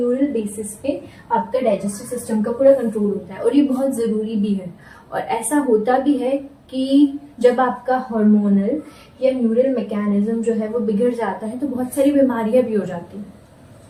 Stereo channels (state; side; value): identical; both; correlation 1.00